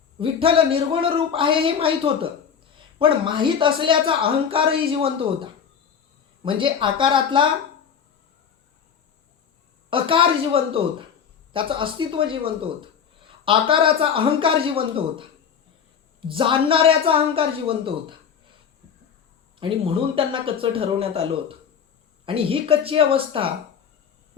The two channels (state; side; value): quieter; right; 7.4 dB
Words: विठ्ठल निर्गुण रूप आहे हे माहीत होतं. पण माहीत असल्याचा अहंकारही जिवंत होता. म्हणजे आकारातला अकार जिवंत होता, त्याचं अस्तित्व जिवंत होतं. आकाराचा अहंकार जिवंत होता, जाणणाऱ्याचा अहंकार जिवंत होता. आणि म्हणून त्यांना कच्चं ठरवण्यात आलं होतं. आणि ही कच्ची अवस्था